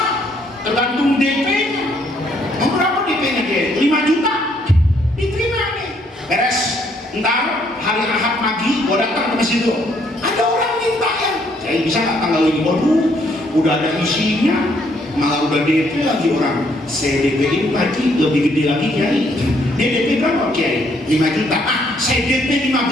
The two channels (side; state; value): both; normal; correlation 0.68